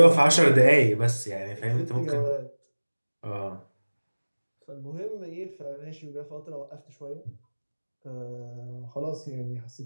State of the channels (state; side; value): inverted; both; correlation -1.00